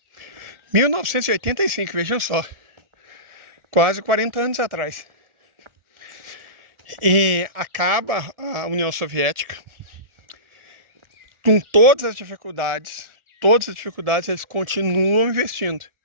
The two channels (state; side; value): late; left; 1.4 ms